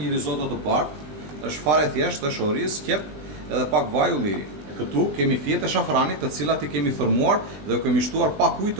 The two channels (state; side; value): late; left; 20 ms